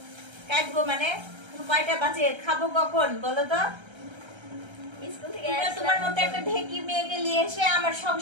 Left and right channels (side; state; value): left; late; 1.3 ms